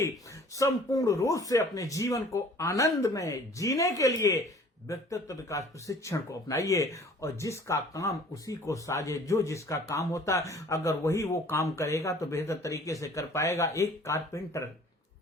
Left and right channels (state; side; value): normal; both; correlation 0.51